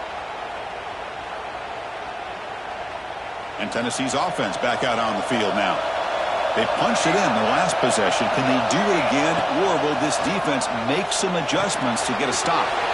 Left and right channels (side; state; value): both; identical; correlation 1.00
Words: And Tennessee's offense back out on the field now. They punched it in the last possession. Can they do it again, or will this defense make some adjustments to get a stop?